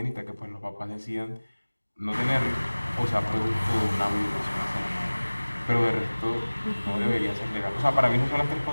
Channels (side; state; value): both; inverted; correlation -1.00